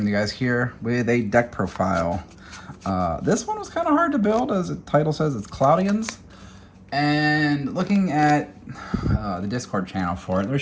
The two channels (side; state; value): both; identical; correlation 1.00